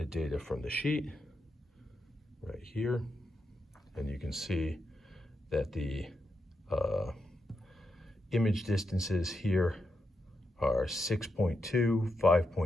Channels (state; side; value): normal; both; correlation 0.84